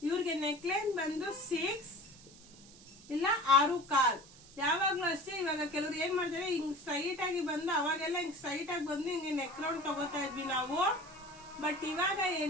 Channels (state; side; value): noise; right; hiss, 21 dB below the sound